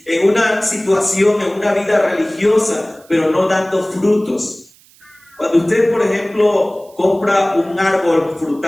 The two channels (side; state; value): right; noise; hiss, 28 dB below the sound